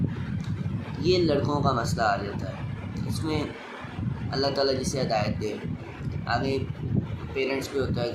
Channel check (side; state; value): both; identical; correlation 1.00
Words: ये लड़कों का मसला आ जाता है। इसमें अल्लाह ताला जिसे हिदायत दे। आगे पेरेंट्स पे होता है